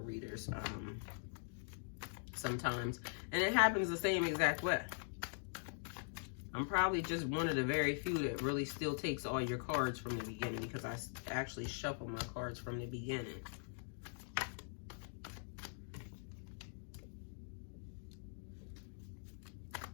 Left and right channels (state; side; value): silent; right; digital silence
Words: readers sometimes, and it happens the same exact way. I'm probably just one of the very few that really still takes all your cards from the beginning, because I actually shuffle my cards from the beginning.